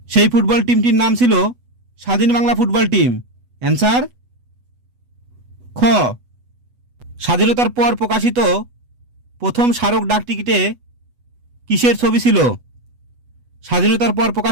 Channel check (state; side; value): late; left; 8.1 ms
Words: সেই ফুটবল টিমটির নাম ছিল স্বাধীন বাংলা ফুটবল টিম। অ্যান্সার খ। স্বাধীনতার পর প্রকাশিত প্রথম স্মারক ডাকটিকিটে কিসের ছবি ছিল? স্বাধীনতার পর